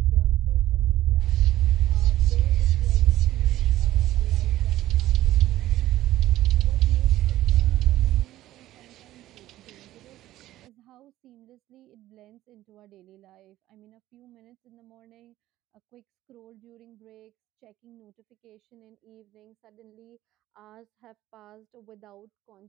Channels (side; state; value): left; quieter; 14.7 dB